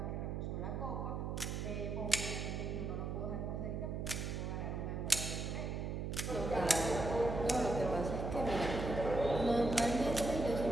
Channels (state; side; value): noise; right; hum, 3 dB below the sound